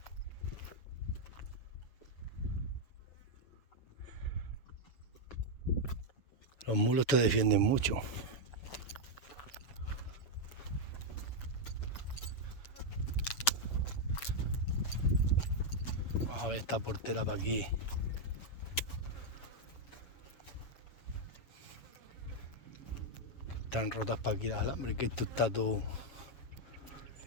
Los mulos te defienden mucho. Vamos a ver esta portera para aquí. Están rotas para aquí las alambres, que esto está todo...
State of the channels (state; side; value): late; right; 7.1 ms